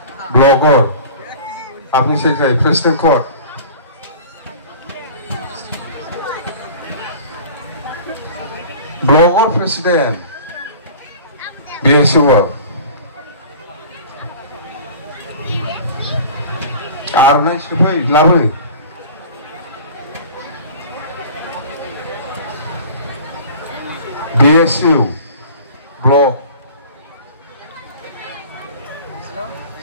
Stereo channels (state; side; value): inverted; both; correlation -0.42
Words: ব্লগর আপনি সেক্রেটারি প্রেসিডেন্ট কোড ব্লগর প্রেসিডেন্ট বিএসইউ আর নাই সবাই লাভে BSU blog